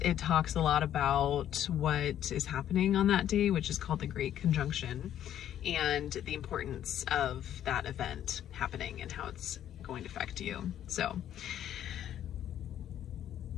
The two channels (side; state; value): right; quieter; 10.9 dB